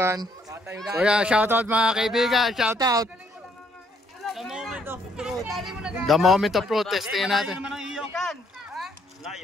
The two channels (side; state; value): both; normal; correlation 0.69